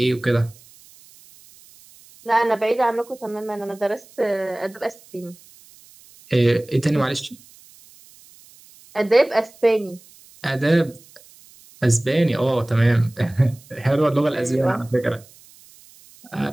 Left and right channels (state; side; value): noise; right; hiss, 25 dB below the sound